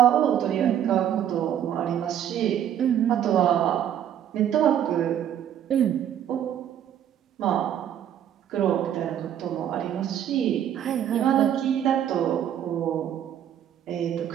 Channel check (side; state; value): left; quieter; 10.1 dB